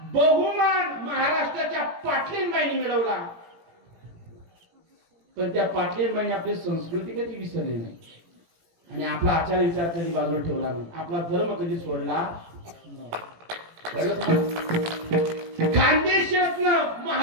बहुमान महाराष्ट्राच्या पाटलींबाईंनी मिळवला, पण त्या पाटलींबाईंनी आपली संस्कृती कधी विसरली नाही आणि आपला आचार विचार कधी बाजूला ठेवला नाही, आपला धर्म कधी सोडला. खानदेशातन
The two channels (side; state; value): left; late; 18 ms